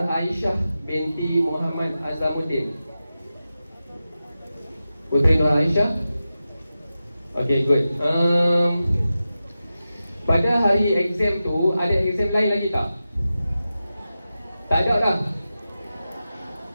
binti Muhammad Azamuddin. Putri Nur Aisyah. Okay, good. Pada hari exam tu ada exam lain lagi tak? Tak ada lah.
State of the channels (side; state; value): both; inverted; correlation -0.93